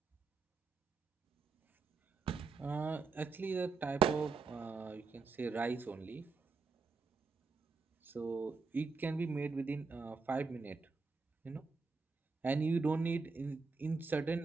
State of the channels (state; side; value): quieter; left; 4.5 dB